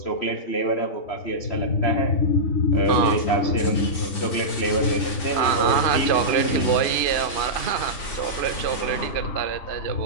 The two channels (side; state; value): right; late; 3.5 ms